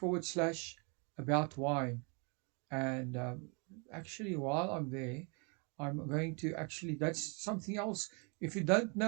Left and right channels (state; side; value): quieter; left; 34.3 dB